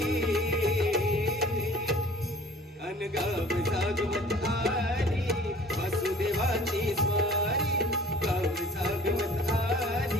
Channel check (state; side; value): normal; both; correlation 0.49